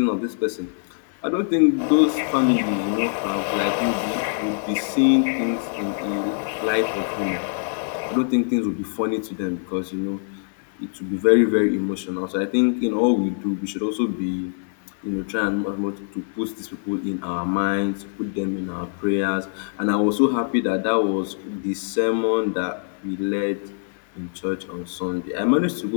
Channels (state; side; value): silent; right; 56 dB below the other